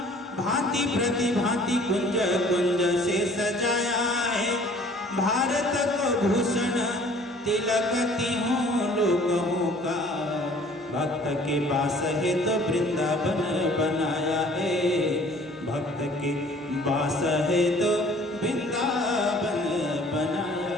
भांति प्रतिभांति कुंज कुंज से सजाया है। भारत को भूषण तिलक तीहों लोगों का, भक्त के पास है तो वृंदावन बनाया है। भक्त के पास है तो वृंदावन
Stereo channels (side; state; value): both; normal; correlation 0.53